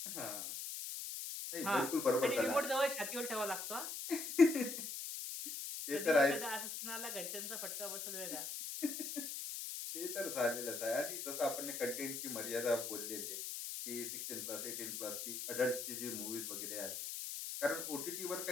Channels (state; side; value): noise; left; hiss, 5 dB below the sound